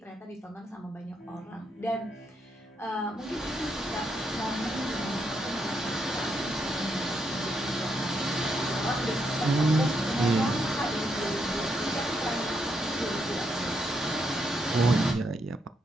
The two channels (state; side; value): normal; both; correlation 0.79